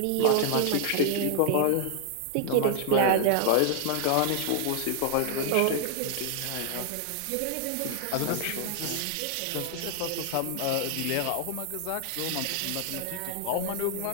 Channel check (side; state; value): both; different; correlation 0.00